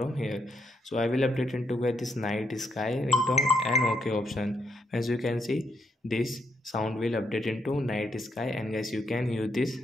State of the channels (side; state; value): both; normal; correlation 0.76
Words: here. So I will update into guys this night sky ringtone and okay option. As you can see, this sound will update into night sky, and guys you can use this